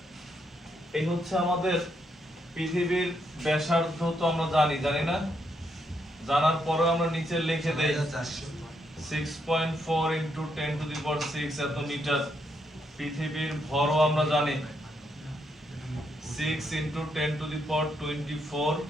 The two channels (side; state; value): both; normal; correlation 0.78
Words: এই হচ্ছে আমাদের পৃথিবীর ব্যাসার্ধ। তো আমরা জানি না, জানার পরে আমরা নিচে লিখে দেই 6.4 × 10⁶ এত মিটার। পৃথিবীর ভরও আমরা জানি 6 × 10⁻24